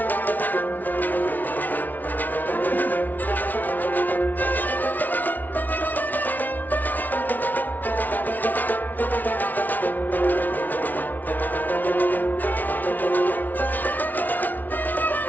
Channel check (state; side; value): late; right; 0.081 ms